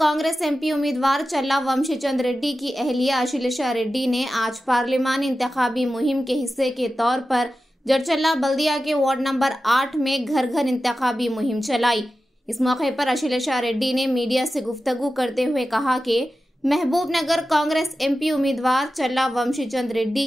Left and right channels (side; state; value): both; normal; correlation 0.93